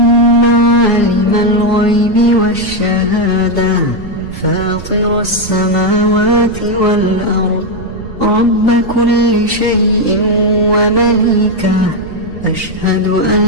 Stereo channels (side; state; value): right; noise; rumble, 14 dB below the sound